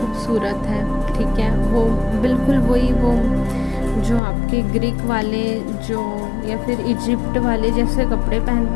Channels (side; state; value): right; drops out; at 4.2 s